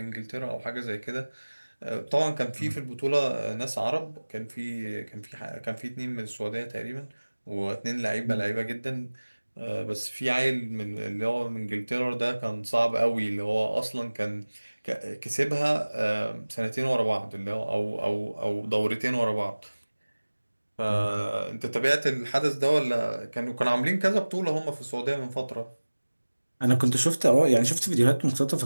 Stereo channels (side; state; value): both; inverted; correlation -1.00